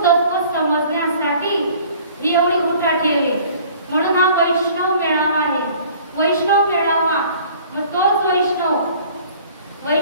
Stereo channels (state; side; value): inverted; both; correlation -0.51